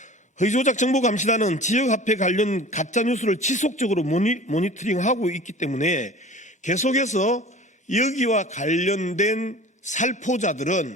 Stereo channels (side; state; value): both; normal; correlation 0.41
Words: 허위조작 정보감시단은 지역화폐 관련 가짜뉴스를 지속적으로 모니터링하고 있기 때문에 계속해서 여기와 관련된